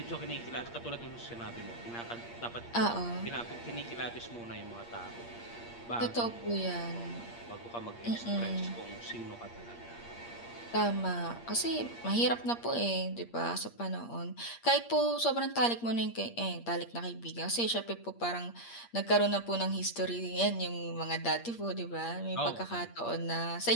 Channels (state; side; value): late; right; 8.5 ms